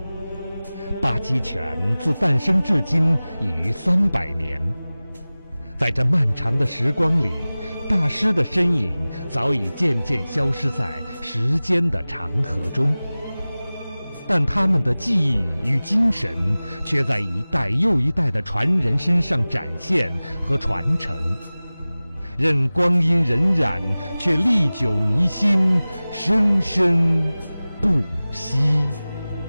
八极拳自诞生至今已逾300年，在这漫长的时光里，大师的身影早已渐渐消失在时间的长河中，但他们的技艺与精神却在一代又一代的传人身上展现和传承。任光阴荏苒，却历久弥新，生生不息。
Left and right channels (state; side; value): inverted; both; correlation -0.98